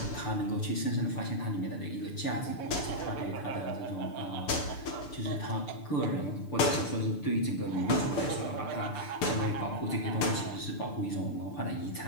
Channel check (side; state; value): right; late; 6.8 ms